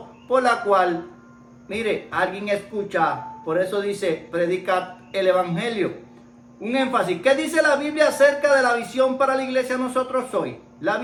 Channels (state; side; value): identical; both; correlation 1.00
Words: por la cual, mire, alguien escucha. Por eso dice: predica el evangelio. Un énfasis. ¿Qué dice la Biblia acerca de la visión para la iglesia nosotros hoy? La